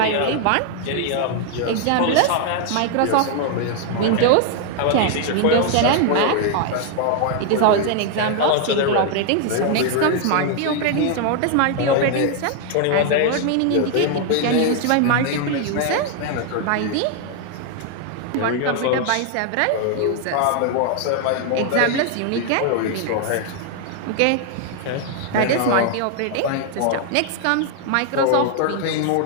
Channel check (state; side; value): different; both; correlation 0.00